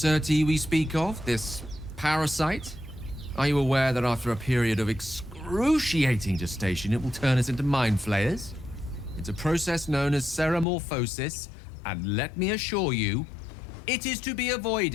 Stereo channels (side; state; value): right; drops out; at 10.7 s